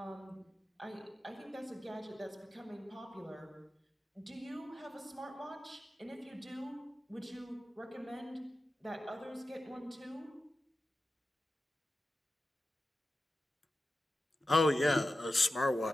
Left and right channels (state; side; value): normal; both; correlation 0.93